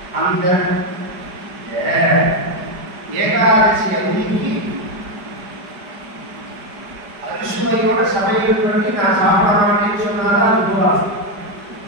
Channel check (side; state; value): left; late; 5.0 ms